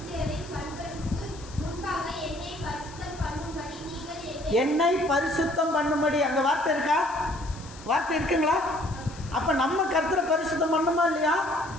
என்னை பரிசுத்தம் பண்ணும்படி. அங்கே வார்த்தை இருக்கா? வார்த்தை இருக்குங்களா? அப்போ நம்ம கர்த்தரை பரிசுத்தம் பண்ணணுமா இல்லையா?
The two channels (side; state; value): left; noise; hiss, 19 dB below the sound